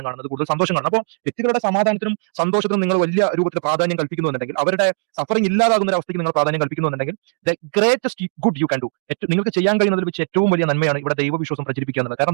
കാണുന്നത്, കൂടുതൽ സന്തോഷം കാണുന്നത്. അപ്പോൾ വ്യക്തികളുടെ സമാധാനത്തിനും സന്തോഷത്തിനും നിങ്ങൾ വലിയ രൂപത്തിൽ പ്രാധാന്യം കൽപ്പിക്കുന്നുണ്ടെങ്കിൽ, അവരുടെ സഫറിംഗ് ഇല്ലാതാകുന്ന ഒരു അവസ്ഥയ്ക്ക് നിങ്ങൾ പ്രാധാന്യം കൽപ്പിക്കുന്നുണ്ടെങ്കിൽ, the greatest good you can do, നിങ്ങൾക്ക് ചെയ്യാൻ കഴിയുന്നതിൽ വെച്ച് ഏറ്റവും വലിയ നന്മയാണ് ഇവിടെ ദൈവവിശ്വാസം പ്രചരിപ്പിക്കുക എന്നുള്ളത്.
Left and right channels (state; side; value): silent; left; digital silence